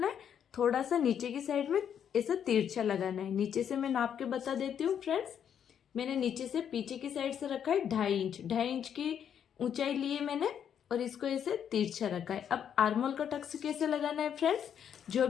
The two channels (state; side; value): quieter; right; 8.7 dB